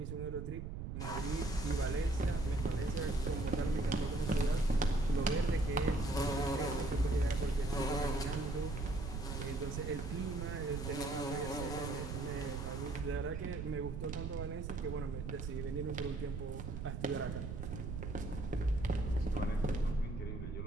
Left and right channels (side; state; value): right; noise; rumble, 5 dB below the sound